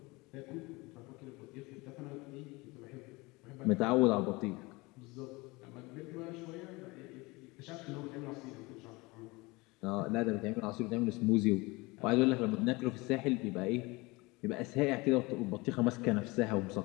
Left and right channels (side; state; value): right; quieter; 23.8 dB